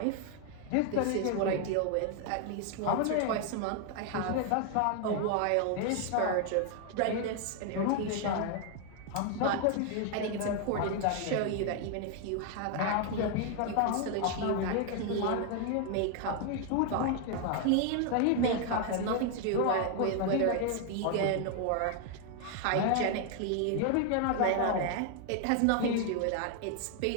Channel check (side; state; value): both; different; correlation 0.00